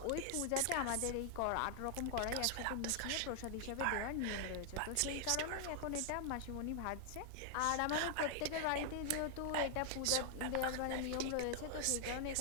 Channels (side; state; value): both; different; correlation 0.00